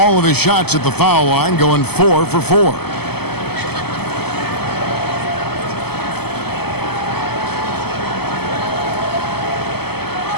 of his shots at the foul line, going 4 for 4.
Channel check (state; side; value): late; right; 0.96 ms